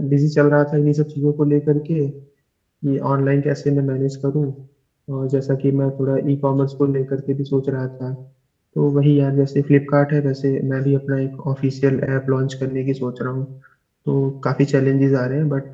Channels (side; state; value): both; identical; correlation 1.00